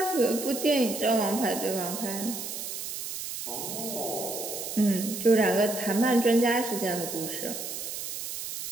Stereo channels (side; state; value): right; noise; hiss, 6 dB below the sound